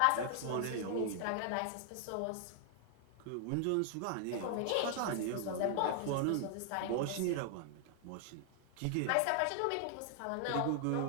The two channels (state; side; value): different; both; correlation 0.00